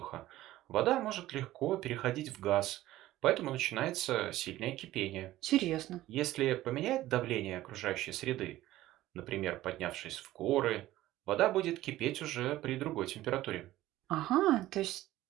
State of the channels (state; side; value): quieter; left; 15.5 dB